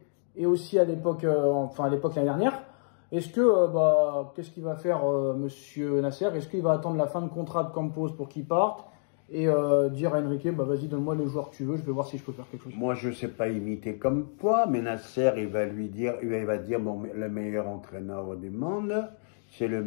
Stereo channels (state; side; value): silent; right; digital silence